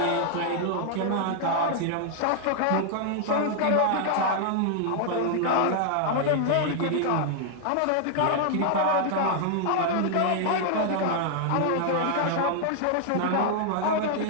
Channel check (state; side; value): different; both; correlation 0.00